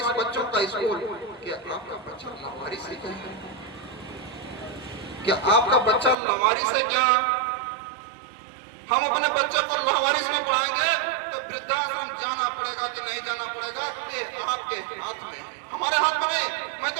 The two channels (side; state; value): left; drops out; at 6.2 s